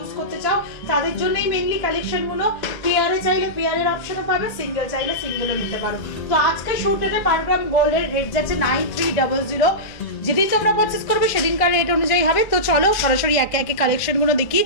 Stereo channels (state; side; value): late; right; 1.4 ms